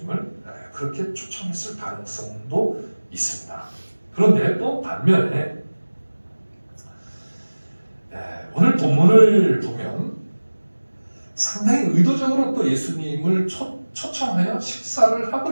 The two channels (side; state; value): both; inverted; correlation -1.00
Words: 그렇게 초청했을 가능성도 있습니다. 그런데 또 반면에 오늘 본문을 보면 상당히 의도적으로 또 예수님을 초청하여 식사를 하고